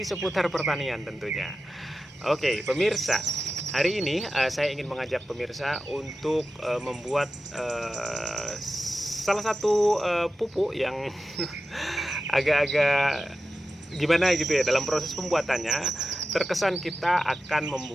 seputar pertanian tentunya. Oke, pemirsa, hari ini saya ingin mengajak pemirsa untuk membuat salah satu pupuk yang agak-agak gimana gitu ya. Dalam proses pembuatannya terkesan kita akan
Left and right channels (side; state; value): both; normal; correlation 0.93